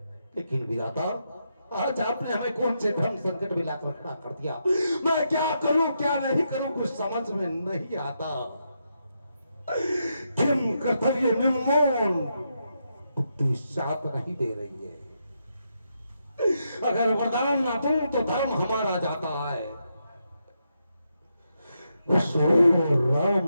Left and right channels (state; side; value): inverted; both; correlation -0.82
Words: लेकिन विधाता, आज आपने हमें कौन से धर्म संकट में लाकर खड़ा कर दिया। मैं क्या करूं क्या नहीं करूं कुछ समझ में नहीं आता। किम कर्तव्य निर्मोल बुद्धि साथ नहीं दे रही है। अगर वरदान ना दूं तो धर्म हमारा जाता है, राम